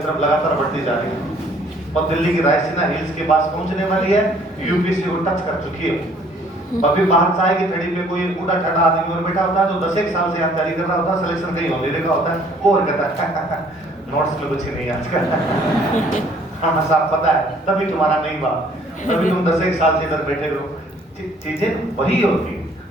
लगातार बढ़ती जा रही है और दिल्ली की रायसीना हिल्स के पास पहुंचने वाली है, यूपीसी को टच कर चुकी है। अभी बाहर चाय की थड़ी पे कोई उड़ा ठड़ा आदमी और बैठा होता है जो 10 एक साल से तैयारी कर रहा होता है, सिलेक्शन कहीं होने लगा होता है, वो और कहता है नोट्स में कुछ नहीं आजकल। हाँ साहब पता है, तभी तुम्हारा नहीं हुआ, तभी तुम 10 एक साल से इधर बैठे रहो। चीजें वही होती है,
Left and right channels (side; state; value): both; normal; correlation 0.59